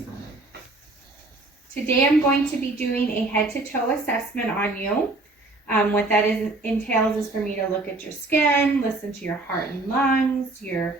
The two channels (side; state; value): left; quieter; 3.1 dB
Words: Today I'm going to be doing a head-to-toe assessment on you. What that entails is for me to look at your skin, listen to your heart and lungs, your